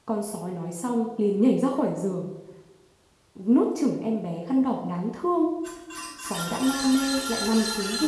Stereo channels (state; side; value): identical; both; correlation 1.00